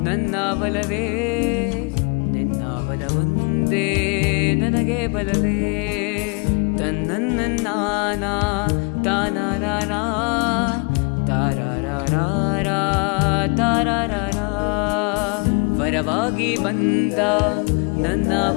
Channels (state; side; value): quieter; right; 33.5 dB